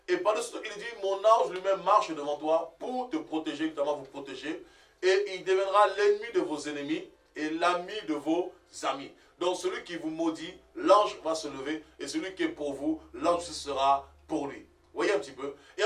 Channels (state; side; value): identical; both; correlation 1.00